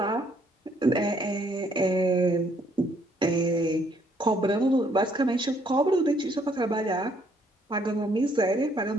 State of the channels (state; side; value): normal; both; correlation 0.67